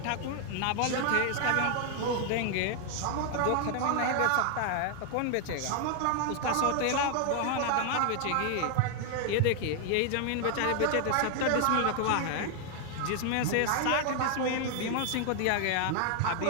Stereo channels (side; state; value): both; different; correlation 0.00